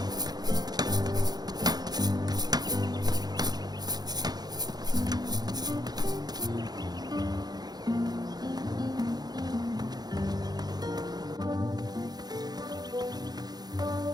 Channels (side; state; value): left; late; 0.19 ms